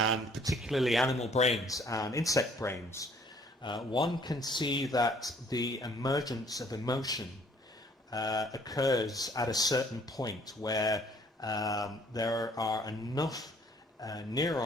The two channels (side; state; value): both; normal; correlation 0.60